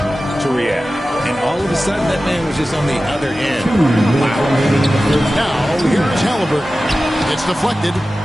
to react. And all of a sudden, that man was just on the other end. Wow. Now, here's Halliburton. It's deflected.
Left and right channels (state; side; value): normal; both; correlation 0.95